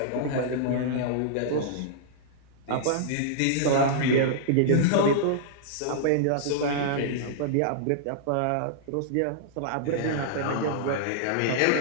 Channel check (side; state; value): both; different; correlation -0.02